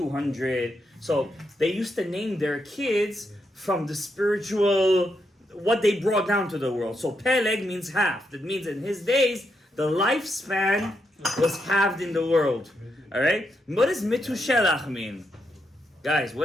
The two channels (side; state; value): both; normal; correlation 0.81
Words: So they used to name their kids from the spiritual, what they brought down to the world. So Peleg means half. That means in his days, the lifespan was halved in the world. Alright? What does Metushelach mean? Guys,